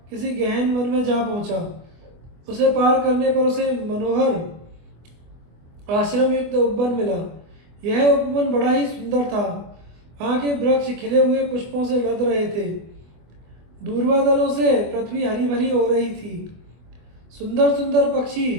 किसी गहन वन में जा पहुंचा। उसे पार करने पर उसे मनोहर आश्रम युक्त उपवन मिला। यह उपवन बड़ा ही सुंदर था। वहाँ के वृक्ष खिले हुए पुष्पों से लद रहे थे। दूर्वादलों से पृथ्वी हरी भरी हो रही थी। सुंदर सुंदर पक्षी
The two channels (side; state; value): left; late; 24 ms